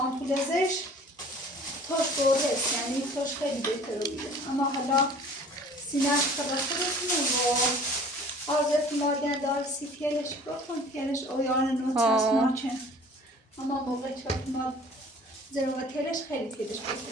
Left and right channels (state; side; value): normal; both; correlation 0.48